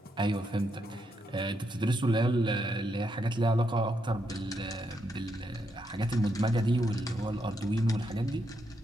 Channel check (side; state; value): both; normal; correlation 0.80